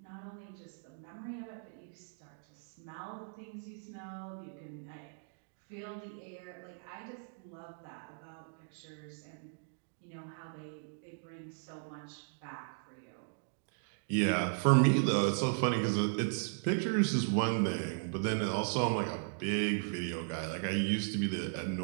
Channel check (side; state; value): left; silent; digital silence